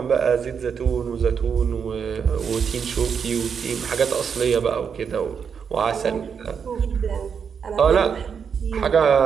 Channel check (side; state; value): left; quieter; 6.8 dB